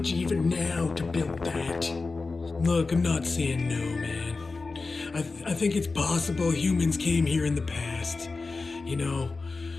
even now to build that. Look, I'm not saying no, man. I think it's possible humans came here in the past. You know,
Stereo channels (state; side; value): quieter; right; 3.9 dB